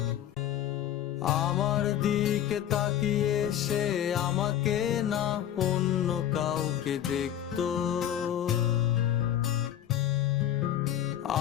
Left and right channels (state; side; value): quieter; right; 11.0 dB